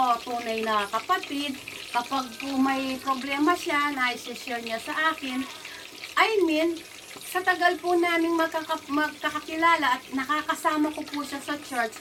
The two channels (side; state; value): both; identical; correlation 1.00